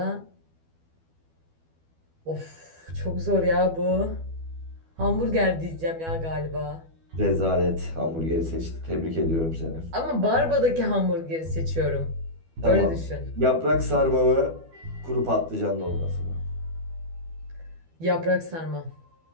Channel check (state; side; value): late; left; 12 ms